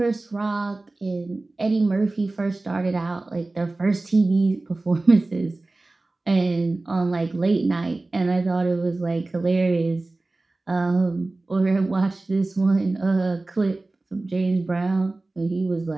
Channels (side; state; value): left; quieter; 3.1 dB